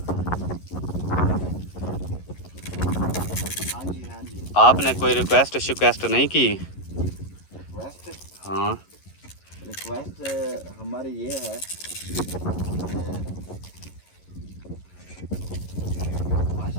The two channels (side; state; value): right; late; 11 ms